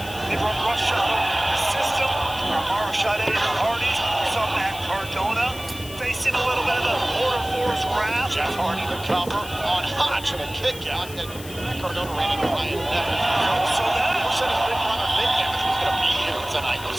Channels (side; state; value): left; noise; hiss, 15 dB below the sound